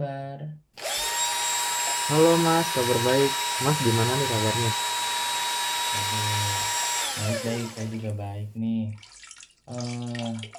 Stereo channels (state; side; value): identical; both; correlation 1.00